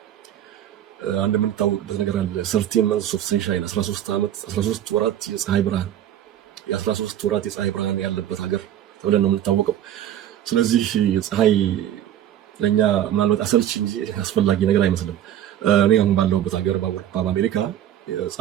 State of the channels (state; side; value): quieter; left; 11.1 dB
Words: አንድ የምንታወቅበት ነገር አለ። 13 months of sunshine 13 ወራት የፀሐይ ብርሃን የ13 ወራት የፀሐይ ብርሃን ያለበት ሀገር ተብለን ነው የምንታወቀው። ስለዚህ የፀሐይ ለኛ ምናልባት አሰልቺ እንጂ አስፈላጊ ነገር አይመስልም። እኔ አሁን ባለሁበት ሀገር በአውሮፓ በአሜሪካ